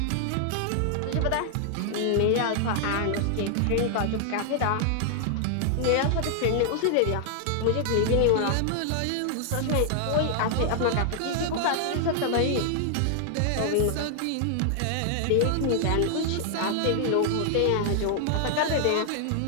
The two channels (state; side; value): different; both; correlation 0.00